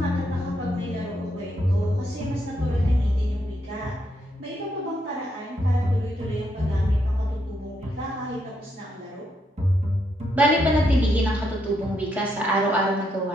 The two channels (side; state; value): both; normal; correlation 0.78